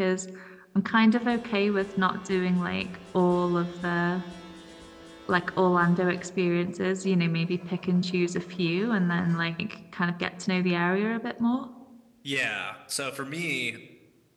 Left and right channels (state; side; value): identical; both; correlation 1.00